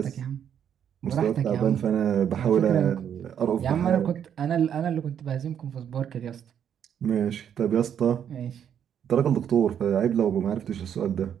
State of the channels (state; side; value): quieter; left; 8.9 dB